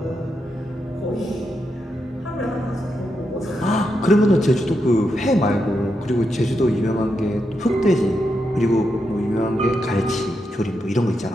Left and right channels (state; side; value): normal; both; correlation 0.84